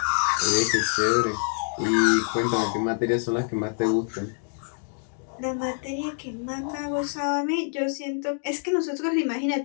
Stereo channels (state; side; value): silent; right; digital silence